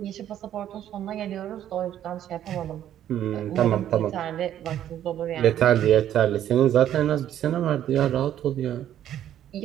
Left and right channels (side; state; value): left; quieter; 11.1 dB